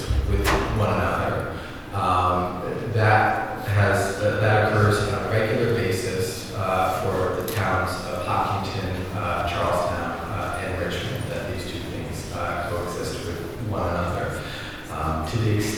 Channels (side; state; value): both; identical; correlation 1.00